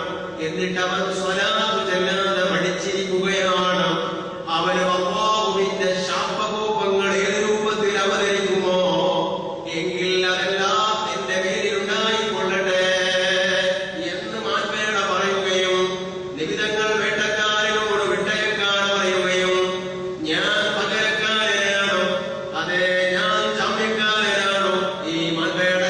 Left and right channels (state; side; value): identical; both; correlation 1.00